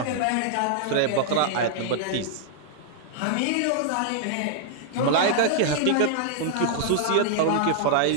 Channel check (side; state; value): both; different; correlation -0.01